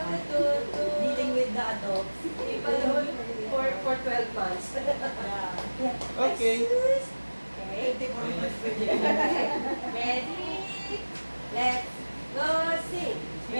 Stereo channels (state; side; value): inverted; both; correlation -1.00